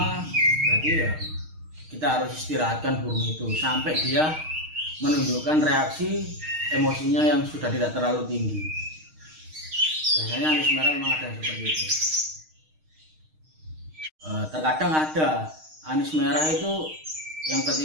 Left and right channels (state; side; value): late; left; 6.4 ms